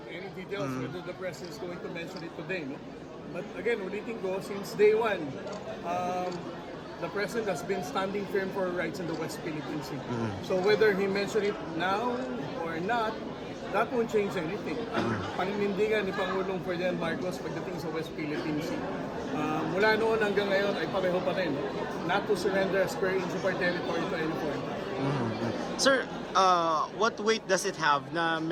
any details whether the President is going to mention it today, no? But again, ulitin ko, since day one, the President has been standing firm for rights in the West Philippine Sea. So whether he mentioned it now or not, that won't change anything. Ang paninindigan ni Pangulong Ferdinand Marcos pagdating sa West Philippine Sea, mula noon hanggang ngayon ay pareho pa rin, not to surrender a square inch of our territory to any foreign power. Sir, what weight does it have na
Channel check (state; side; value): identical; both; correlation 1.00